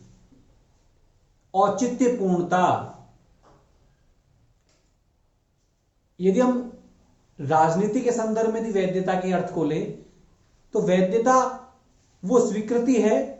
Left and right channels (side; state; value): both; identical; correlation 1.00